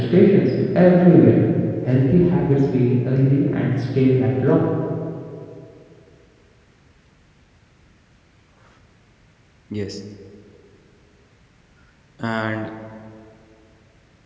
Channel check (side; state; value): both; identical; correlation 1.00